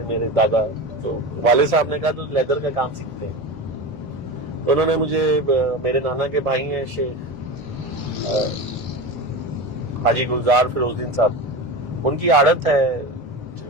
मेरे दादा। तो वाले साहब ने कहा तो लेदर का काम सीखते हैं। तो उन्होंने मुझे, मेरे नाना के भाई हैं शेख हाजी गुलजार फिरोजुद्दीन साहब, उनकी आदत है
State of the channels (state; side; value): normal; both; correlation 0.25